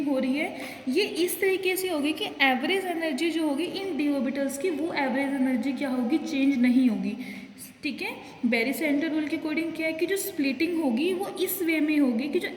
हो रही है ये इस तरीके से होगी कि एवरेज एनर्जी जो होगी इन डी ऑर्बिटल्स की, वो एवरेज एनर्जी क्या होगी? चेंज नहीं होगी। ठीक है। बैरी सेंटर रूल के अकॉर्डिंग क्या है कि जो स्प्लिटिंग होगी वो इस वे में होगी कि जो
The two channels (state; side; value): identical; both; correlation 1.00